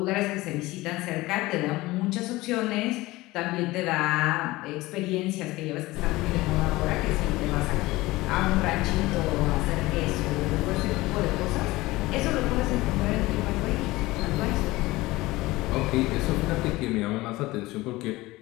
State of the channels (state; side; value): quieter; right; 19.6 dB